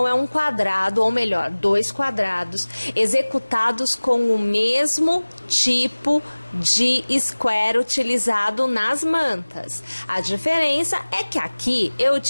é um quadrado, ou melhor, 2 quadrados executados com o mesmo tipo de square utilizado nas mantas. A diferença é que aqui eu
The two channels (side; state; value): both; inverted; correlation -1.00